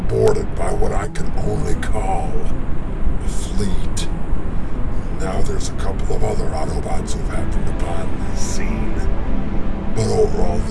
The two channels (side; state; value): both; identical; correlation 1.00